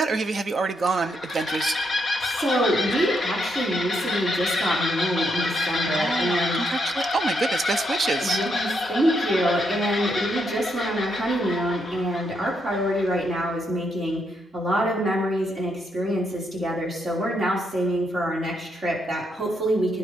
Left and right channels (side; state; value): both; normal; correlation 0.78